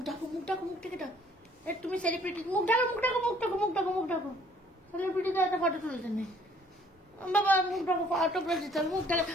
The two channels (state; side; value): normal; both; correlation 0.59